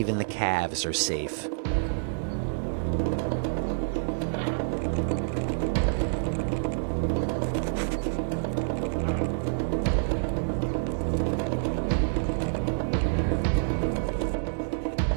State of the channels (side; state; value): left; silent; digital silence